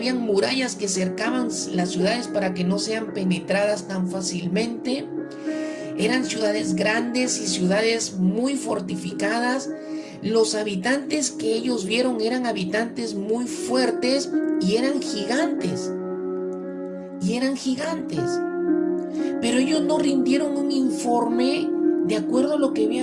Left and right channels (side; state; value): both; identical; correlation 1.00